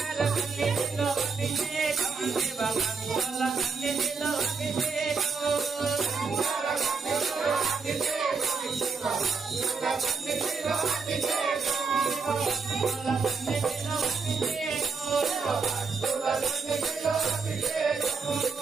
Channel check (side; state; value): left; quieter; 4.9 dB